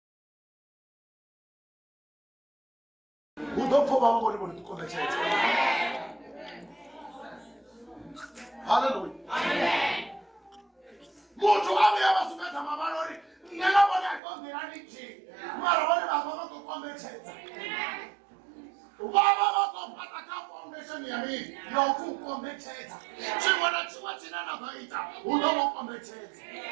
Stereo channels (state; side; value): drops out; left; at 14.2 s